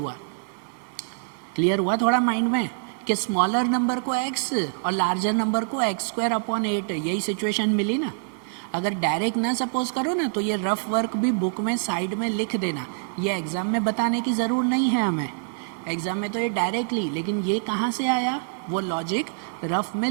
क्लियर हुआ थोड़ा माइंड में कि स्मॉलर नंबर को x और लार्जर नंबर को एक्स स्क्वायर अपॉन 8, यही सिचुएशन मिली ना। अगर डायरेक्ट ना सपोज करो ना तो ये रफ वर्क भी बुक में साइड में लिख देना, ये एग्ज़ाम में बताने की ज़रूर नहीं है हमें, एग्ज़ाम में तो ये डायरेक्टली, लेकिन ये कहाँ से आया वो लॉजिक रफ में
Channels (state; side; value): silent; left; digital silence